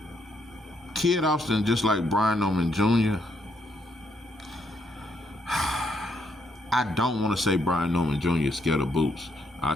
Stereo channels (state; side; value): normal; both; correlation 0.74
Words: Kid Austin, just like Brian Norman Jr., I don't want to say Brian Norman Jr. is scared of Boots. I